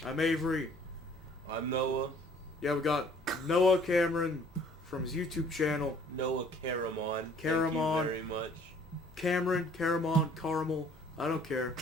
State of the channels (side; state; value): both; normal; correlation 0.56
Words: Avery. I'm Noah. Yeah, we got Noah Cameron from his YouTube channel. Noah Caramon. Caramon. Thank you very much. Caramon, Caramel, I don't care.